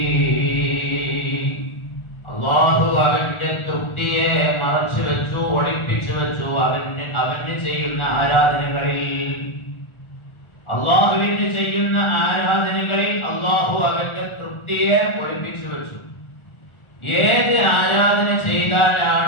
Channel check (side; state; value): right; late; 1.4 ms